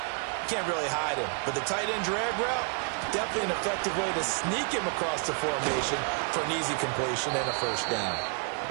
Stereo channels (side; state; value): left; quieter; 38.9 dB